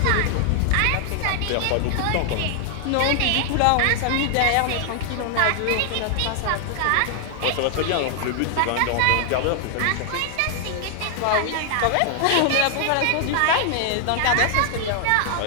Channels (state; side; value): different; both; correlation 0.00